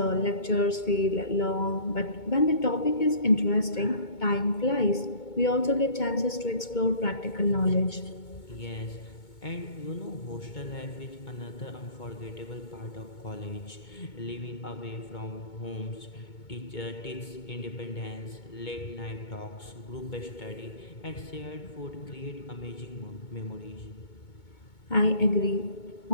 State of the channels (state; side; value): late; right; 2.2 ms